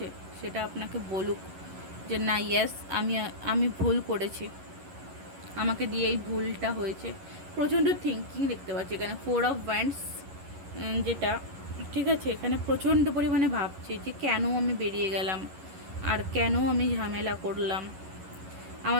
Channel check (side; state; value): left; late; 11 ms